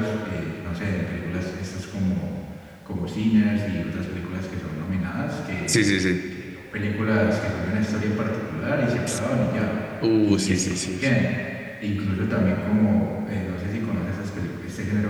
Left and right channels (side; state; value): both; identical; correlation 1.00